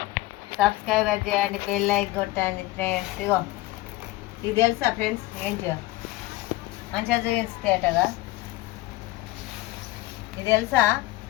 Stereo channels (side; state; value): right; quieter; 18.5 dB